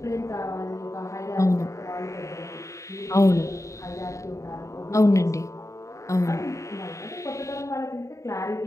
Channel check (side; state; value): right; late; 0.15 ms